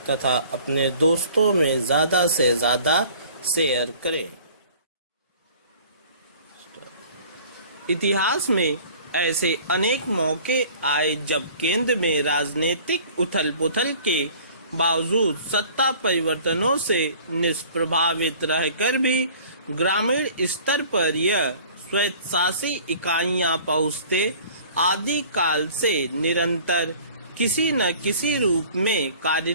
तथा अपने दोस्तों में ज़्यादा से ज़्यादा शेयर करें। इतिहास में ऐसे अनेक मौके आए जब केंद्र में राजनीतिक उथल-पुथल के बावजूद सत्ता परिवर्तनों से निष्प्रभावित रहकर भी ग्रामीण स्तर पर यह स्वायत्तशासी इकाइयां पहुंचते आदि काल से निरंतर किसी न किसी रूप में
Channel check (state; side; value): inverted; both; correlation -0.49